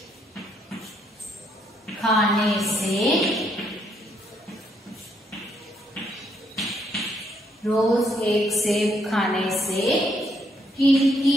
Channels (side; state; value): both; normal; correlation 0.73